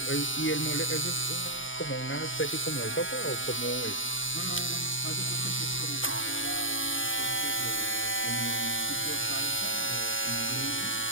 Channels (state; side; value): late; right; 0.57 ms